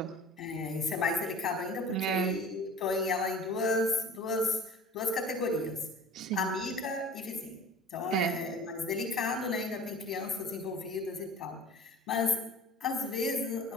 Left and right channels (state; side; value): normal; both; correlation 0.43